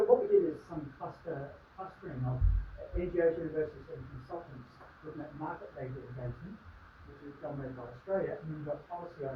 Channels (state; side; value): identical; both; correlation 1.00